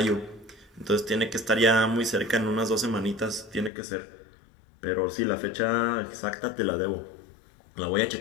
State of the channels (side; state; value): right; drops out; at 3.7 s